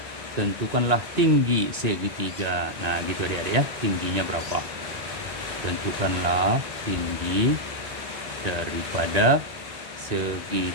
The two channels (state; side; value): late; left; 1.9 ms